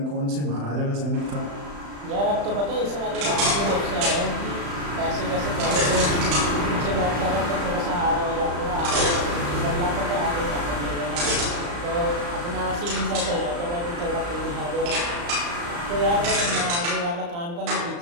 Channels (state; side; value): late; left; 35 ms